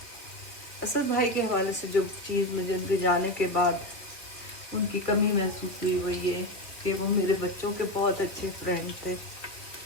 असद भाई के हवाले से जो चीज़ मुझे उनके जाने के बाद उनकी कमी महसूस हुई वो ये कि वो मेरे बच्चों के बहुत अच्छे फ्रेंड थे,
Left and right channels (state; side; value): late; right; 2.6 ms